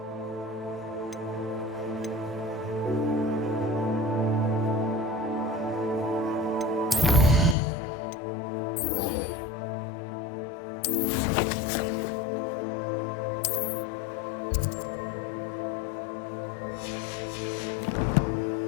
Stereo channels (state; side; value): drops out; right; at 7.6 s